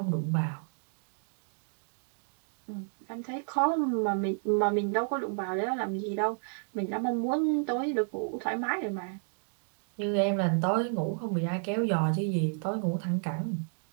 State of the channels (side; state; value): left; silent; 57 dB below the other